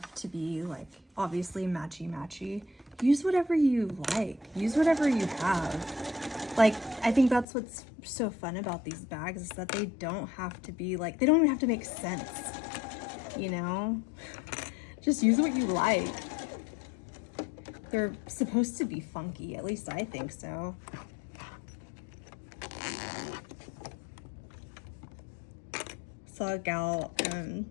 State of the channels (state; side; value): drops out; right; at 7.5 s